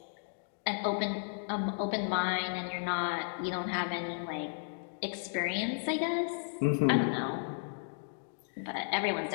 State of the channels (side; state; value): right; silent; digital silence